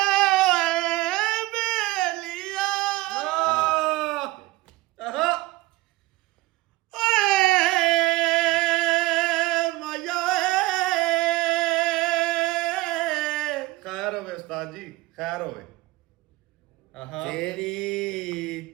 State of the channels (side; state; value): left; quieter; 19.4 dB